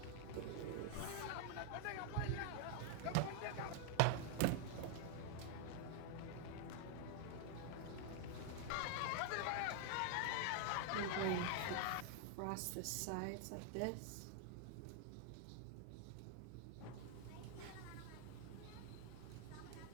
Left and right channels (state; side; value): different; both; correlation 0.00